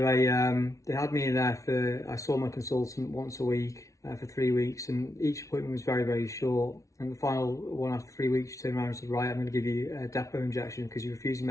they had me in there I saw my consultant once a week for 3 weeks, and each appointment was very, very short. And the final one, after 3 weeks, she turned around and said, right, I'm going to give you a depot injection because you're refusing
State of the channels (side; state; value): right; late; 0.15 ms